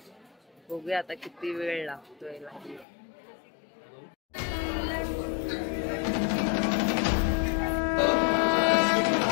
बघूया आता किती वेळ लागतोय.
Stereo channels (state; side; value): drops out; right; at 2.9 s